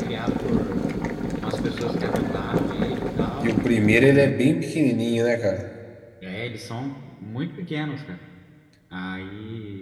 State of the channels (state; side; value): identical; both; correlation 1.00